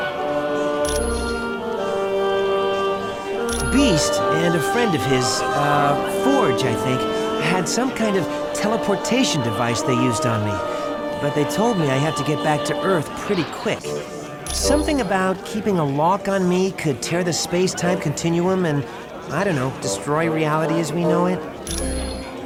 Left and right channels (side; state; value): both; identical; correlation 1.00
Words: Beast and a friend of his, Forge, I think, had some kind of teleportation device they used on me. But they told me I had to get back to Earth pretty quick. Something about keeping a lock on me could tear the space-time continuum and, I don't know, destroy reality as we know it.